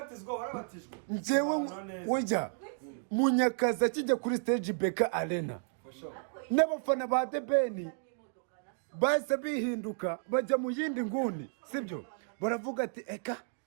warabatijwe. Njyewe wejya Munyakazi akijya kuri stage Beka Arena, n'abafana ba The Ben bahise bihinduka bajya mu yindi nguni. Sibyo? Baravuga ati eka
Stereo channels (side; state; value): left; silent; digital silence